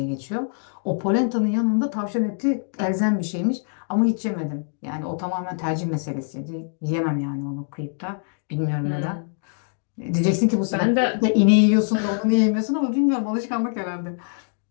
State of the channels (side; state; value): right; silent; digital silence